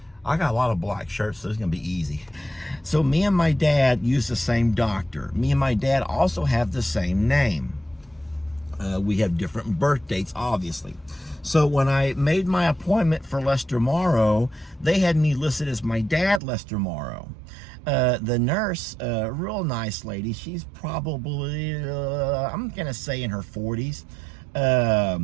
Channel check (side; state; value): left; drops out; at 16.4 s